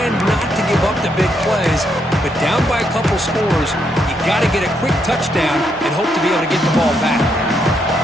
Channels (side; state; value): both; normal; correlation 0.77